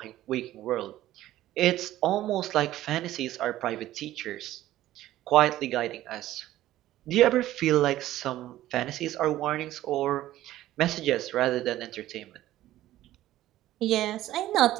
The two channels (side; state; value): left; quieter; 14.4 dB